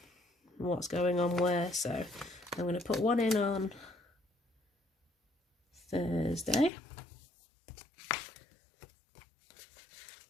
what's going on where. So I'm going to put one in on Thursday.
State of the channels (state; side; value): drops out; right; at 6.7 s